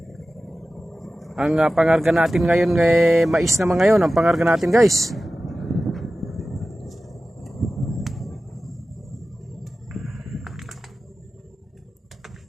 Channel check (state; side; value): normal; both; correlation 0.95